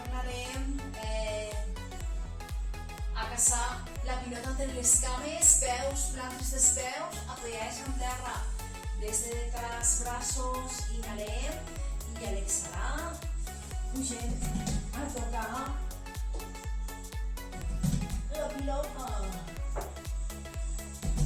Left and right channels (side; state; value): both; identical; correlation 1.00